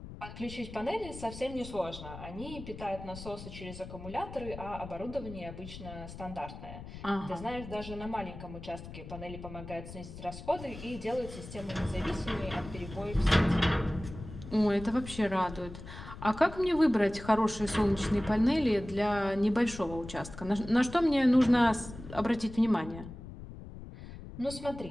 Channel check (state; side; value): noise; left; rumble, 13 dB below the sound